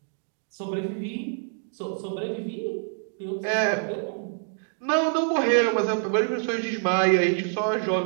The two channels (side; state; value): left; silent; 61 dB below the other